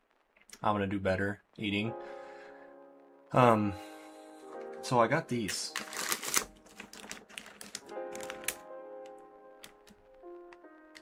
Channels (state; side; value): identical; both; correlation 1.00